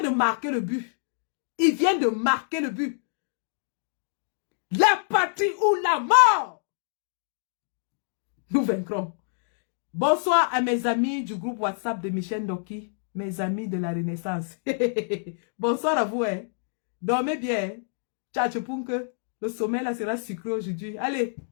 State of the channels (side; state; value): right; silent; digital silence